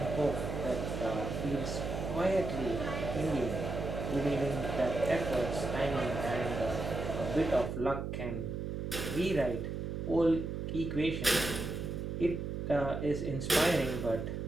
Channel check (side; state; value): right; noise; hum, 4 dB below the sound